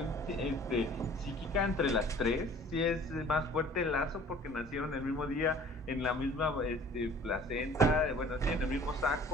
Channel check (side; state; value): both; normal; correlation 0.50